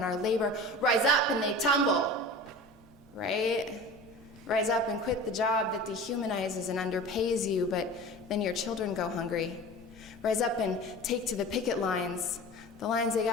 our labor. Rise up and they tumble, right? Rise up and quit the job that dehumanizes and underpays you, but then your children go hungry. Rise up and take to the picket lines. The lines they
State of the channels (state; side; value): normal; both; correlation 0.36